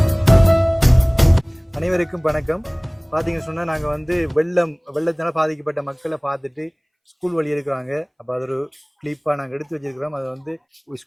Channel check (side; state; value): both; identical; correlation 1.00